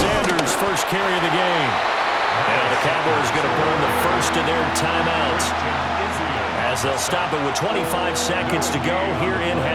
first carry of the game. Now the Cowboys going to burn the first of their timeouts as they'll stop it with 25 seconds to go here in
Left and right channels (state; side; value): identical; both; correlation 1.00